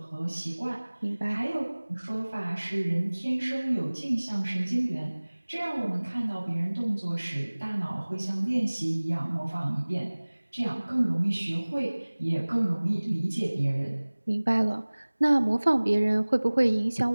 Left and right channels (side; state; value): both; inverted; correlation -1.00